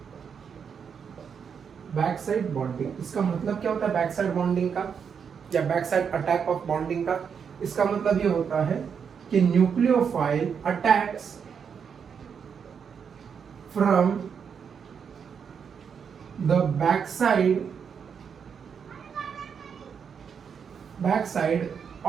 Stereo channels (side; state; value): left; quieter; 6.9 dB